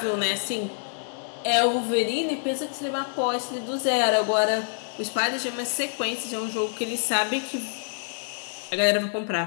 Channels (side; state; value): right; silent; digital silence